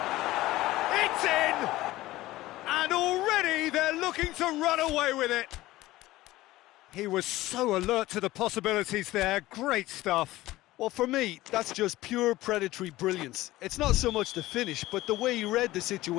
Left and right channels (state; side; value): quieter; right; 17.2 dB